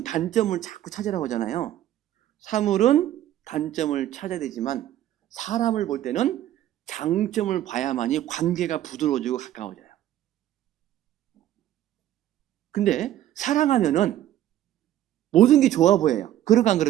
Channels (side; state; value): left; quieter; 12.7 dB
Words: 단점을 자꾸 찾으라고 하잖아요. 사물은 단점을 찾아야 되지만 사람을 볼 때는 장점을 봐야만이 관계가 부드러워지고 가까워져요. 근데 사랑하면은 모든 게 좋아 보여요. 그럴까 안